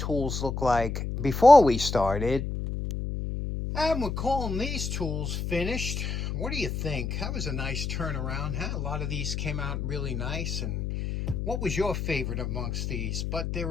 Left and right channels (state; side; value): noise; left; hum, 3 dB below the sound